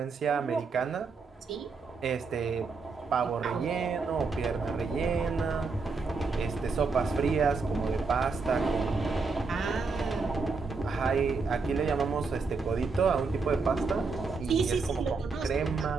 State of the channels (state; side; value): quieter; left; 4.4 dB